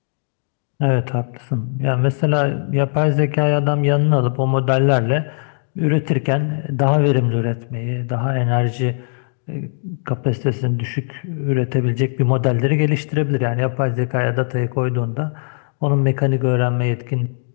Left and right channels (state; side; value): silent; right; digital silence